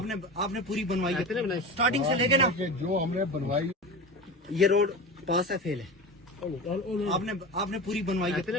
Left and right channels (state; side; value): normal; both; correlation 0.28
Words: نے پوری بنوائی ہے اسٹارٹنگ سے لے کے نا جو ہم نے بنوائی یہ روڈ پاس ہے فیل ہے آپ نے پوری بنوائی